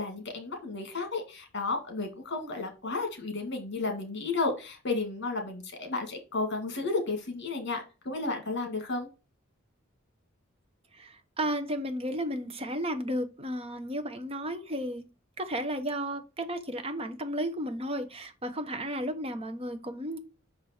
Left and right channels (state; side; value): normal; both; correlation 0.12